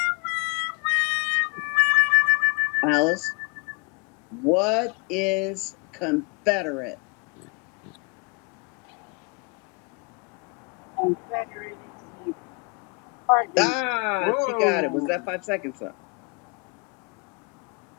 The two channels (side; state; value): right; quieter; 30.3 dB